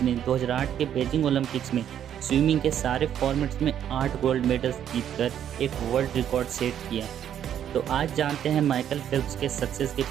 ने 2008 के बीजिंग ओलंपिक्स में स्विमिंग के सारे फॉर्मेट्स में 8 गोल्ड मेडल्स जीतकर एक वर्ल्ड रिकॉर्ड सेट किया। तो आज जानते हैं माइकल फेल्प्स के सक्सेस के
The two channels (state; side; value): quieter; left; 9.9 dB